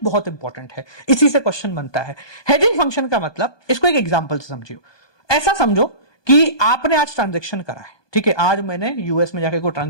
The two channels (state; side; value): late; right; 1.2 ms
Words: बहुत इंपॉर्टेंट है, इसी से क्वेश्चन बनता है। हेजिंग फंक्शन का मतलब, इसको एक एग्जांपल से समझियो। ऐसा समझो कि आपने आज ट्रांजैक्शन करा है, ठीक है, आज मैंने यूएस में जाके कोई